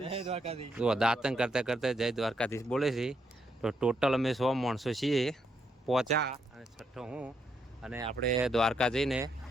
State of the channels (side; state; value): both; normal; correlation 0.77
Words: જય દ્વારકાધીશ। જો દાંતણ કરતા કરતા જય દ્વારકાધીશ બોલે છે। તો ટોટલ અમે 100 માણસો છીએ પહોંચ્યા, અને છઠ્ઠો હું। અને આપણે દ્વારકા જઈને